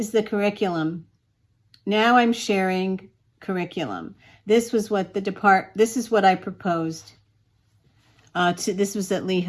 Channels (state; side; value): identical; both; correlation 1.00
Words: the curriculum. Now I'm sharing curriculum. This was what this is what I proposed. This was at